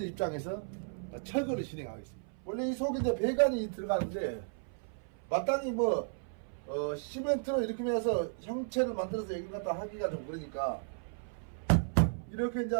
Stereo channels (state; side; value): silent; left; 55 dB below the other